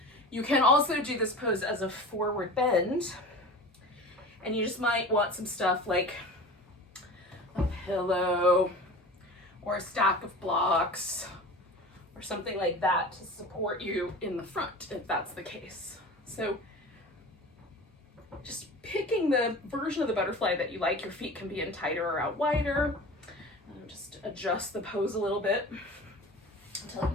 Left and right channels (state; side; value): normal; both; correlation 0.36